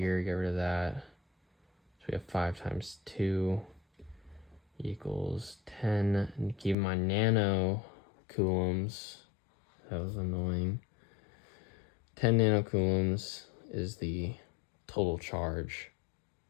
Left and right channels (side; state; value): right; drops out; at 6.8 s